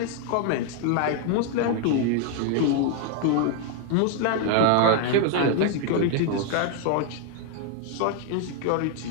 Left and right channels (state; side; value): different; both; correlation 0.00